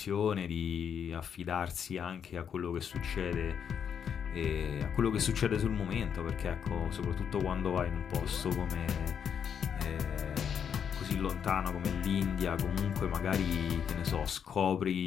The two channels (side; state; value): right; quieter; 7.7 dB